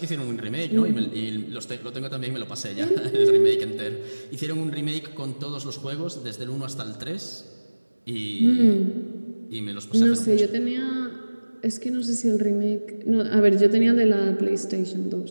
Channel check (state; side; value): inverted; both; correlation -1.00